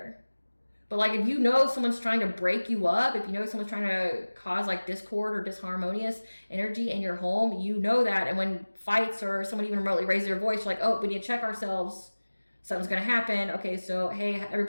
But like if you know someone's trying to break you up, if you know someone's trying to cause like discord or disharmonious energy in your home, you know that. And when fights or someone even remotely raises their voice, like, oh, we need to check ourselves. Something's going to happen. Okay, so hey,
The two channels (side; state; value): both; inverted; correlation -1.00